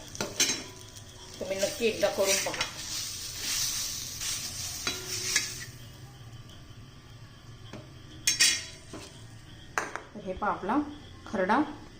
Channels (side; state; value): both; identical; correlation 1.00